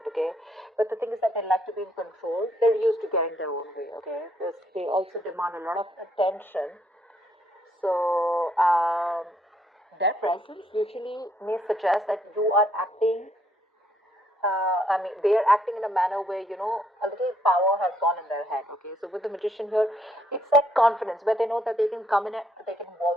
okay? But the thing is that they like to be in control. They're used to getting their own way, okay? They also demand a lot of attention. So, their presence usually may suggest that you are acting they are acting in a manner where, a little power has gone in their head, okay? So with the magician here, it's like confidence, where they know that they can come in, they can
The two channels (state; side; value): normal; both; correlation 0.70